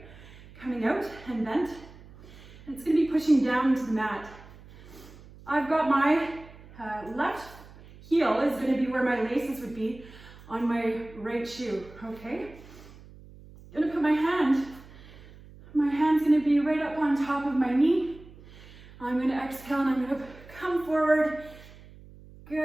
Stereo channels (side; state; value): right; noise; hum, 20 dB below the sound